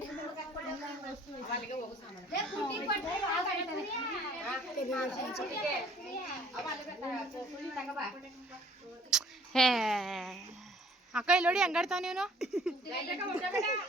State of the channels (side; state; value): both; normal; correlation 0.56